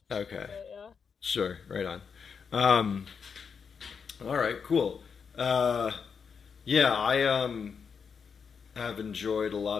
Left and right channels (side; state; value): right; quieter; 6.2 dB